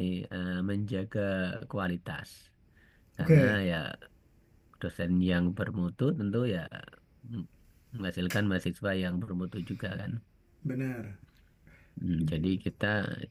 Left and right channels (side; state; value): both; identical; correlation 1.00